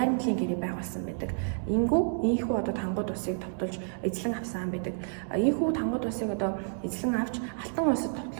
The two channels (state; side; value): silent; left; digital silence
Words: гэрээ байгуулсан байдаг. Ийхүү одоо Тангууд улсыг товтолж эзлэн авсан байдаг. Ийхүү Тангууд улсыг одоо эзлэн авч Алтан улсад